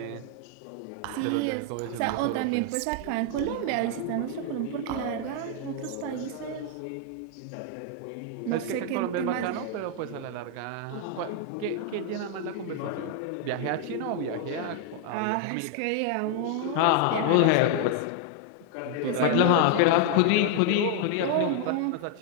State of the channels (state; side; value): different; both; correlation 0.00